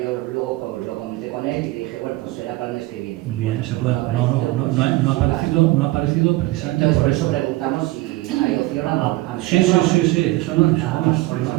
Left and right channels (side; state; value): left; quieter; 19.0 dB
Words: yo luego lo comenté con él y le dije, bueno, pues será para el mes que viene. Bien, se puede. No ha aparecido precisamente Entonces, por por eso eso. preguntamos si hay opción a Sí, meterlo. eso